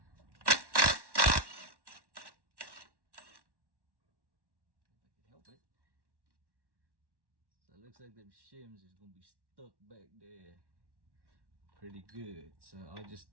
So it looks like them shims is gonna be stuck back there pretty good. So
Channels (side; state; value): left; late; 1.1 ms